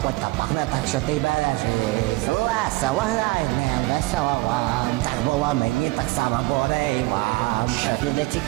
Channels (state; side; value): quieter; left; 22.0 dB